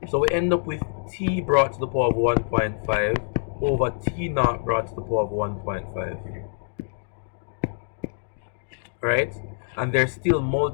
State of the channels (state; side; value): silent; right; digital silence